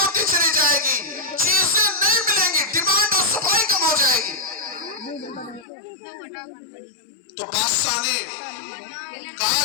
چلی جائے گی، چیزیں نہیں ملیں گی، ڈیمانڈ اور سپلائی کم ہو جائے گی. تو بادشاہ نے کہا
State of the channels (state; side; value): drops out; right; at 5.7 s